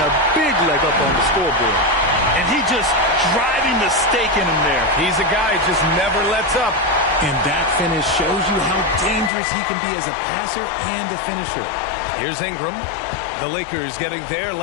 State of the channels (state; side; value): drops out; right; at 9.3 s